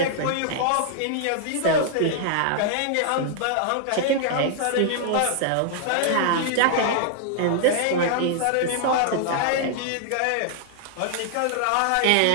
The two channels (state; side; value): different; both; correlation -0.01